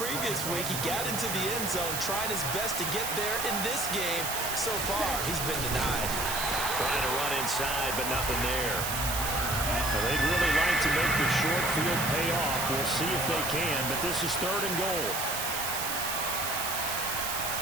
week. He got into the end zone, trying his best to get there in this game. So far, he's been denied. Trying to run inside, but nothing there. Well, they'd really like to make the short field pay off. We'll see if they can, but this is 3rd and goal.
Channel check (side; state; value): right; noise; hiss, 3 dB below the sound